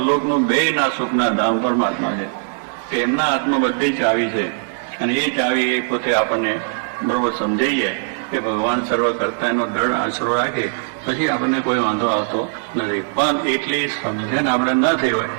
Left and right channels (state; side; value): silent; left; 66 dB below the other